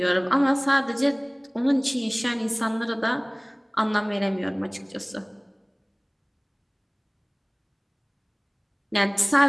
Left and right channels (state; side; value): identical; both; correlation 1.00